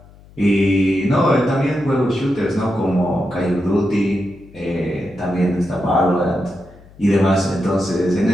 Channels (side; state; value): left; noise; hum, 24 dB below the sound